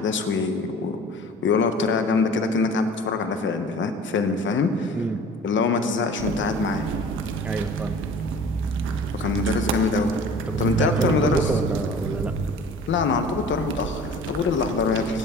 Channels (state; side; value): normal; both; correlation 0.44